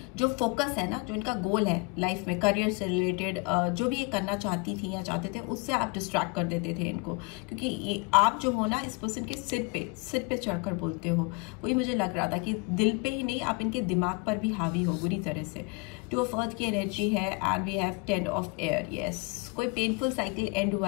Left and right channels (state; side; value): quieter; right; 29.7 dB